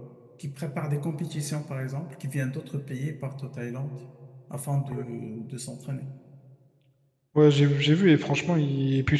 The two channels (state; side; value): identical; both; correlation 1.00